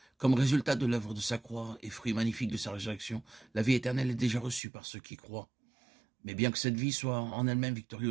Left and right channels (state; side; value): drops out; left; at 4.6 s